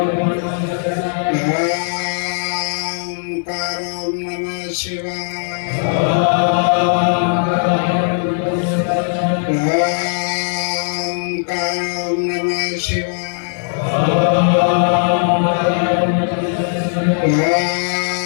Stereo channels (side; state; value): right; silent; digital silence